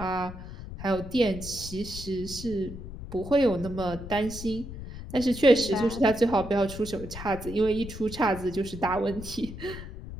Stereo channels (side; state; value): left; noise; rumble, 11 dB below the sound